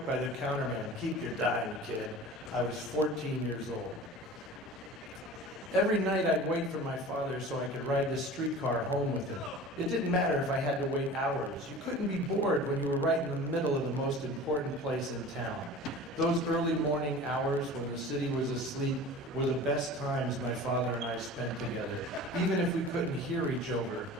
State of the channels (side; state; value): both; normal; correlation 0.39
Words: by the counterman. Keep your dime, kid. I was 14 years old. Every night I'd wait for my father so I could ride the streetcar home with him. It didn't matter if I had to wait hours. You couldn't be bored when you were right in the middle of the most important place in town. Those early morning hours when the city was asleep were the best times my father and I spent together, even if we couldn't hear each other